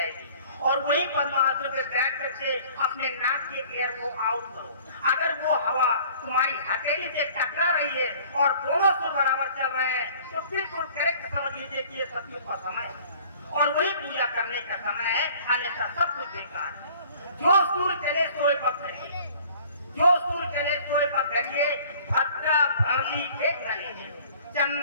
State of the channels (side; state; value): both; inverted; correlation -0.51